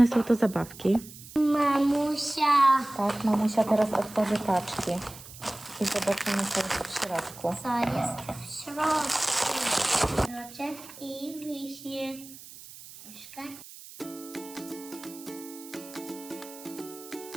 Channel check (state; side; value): noise; right; hiss, 17 dB below the sound